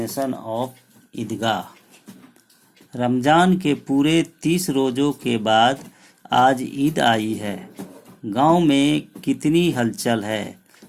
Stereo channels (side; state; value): both; identical; correlation 1.00